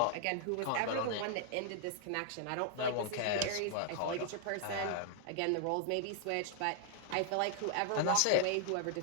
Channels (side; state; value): both; different; correlation -0.01